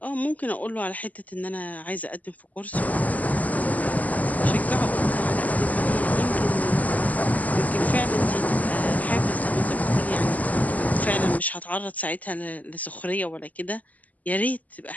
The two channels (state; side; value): late; right; 0.077 ms